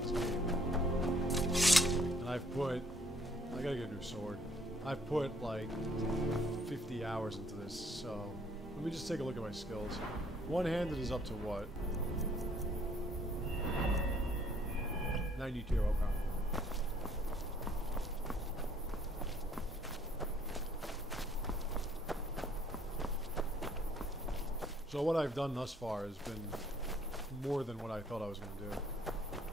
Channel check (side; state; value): both; normal; correlation 0.63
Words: this game. And I've put... I gotta get a new sword. I've put like 50 hours into this, so let me just take a look at my skills. One-handed is up to what? 92, okay. So what I've done thus far has been more than what I thought I was going to do.